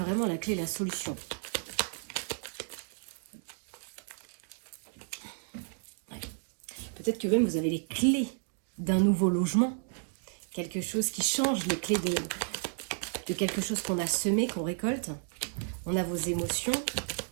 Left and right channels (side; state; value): left; silent; 56 dB below the other